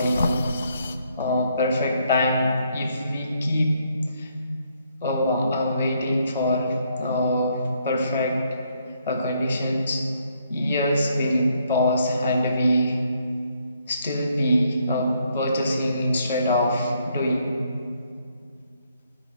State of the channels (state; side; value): inverted; both; correlation -0.72